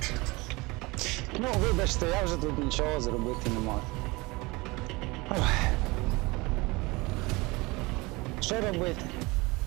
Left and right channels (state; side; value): quieter; left; 23.9 dB